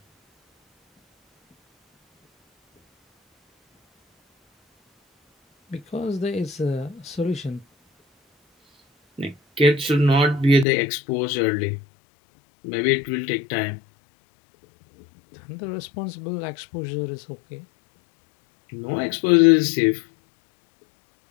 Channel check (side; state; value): right; drops out; at 10.7 s